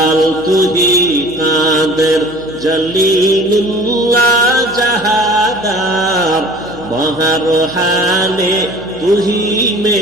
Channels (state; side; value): noise; left; hum, 18 dB below the sound